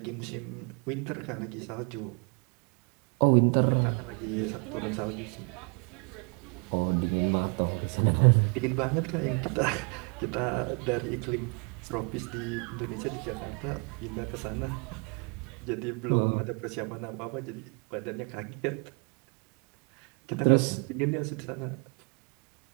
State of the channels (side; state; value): left; quieter; 35.9 dB